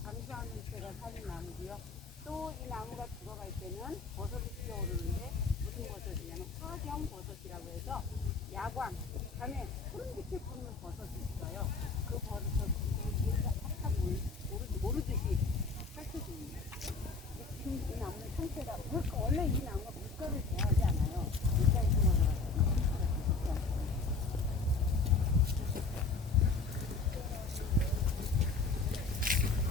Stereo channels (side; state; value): right; quieter; 4.1 dB